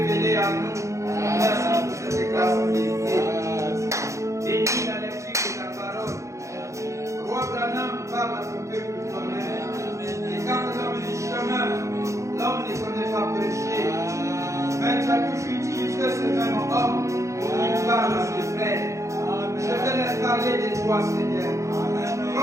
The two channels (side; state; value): left; late; 0.15 ms